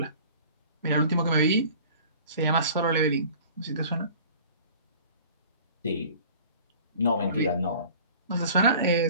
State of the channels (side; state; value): both; inverted; correlation -0.46